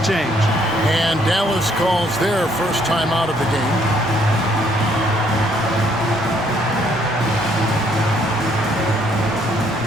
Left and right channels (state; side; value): normal; both; correlation 0.67